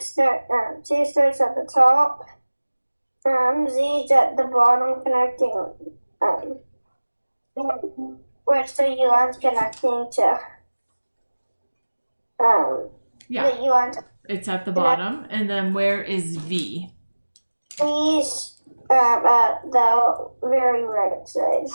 at the top. Z's at the bottom, connecting. Where's the U line's connecting to? Yeah, the U line's. It's at the bottom. And then where is V? V's at the very right side.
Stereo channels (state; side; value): inverted; both; correlation -1.00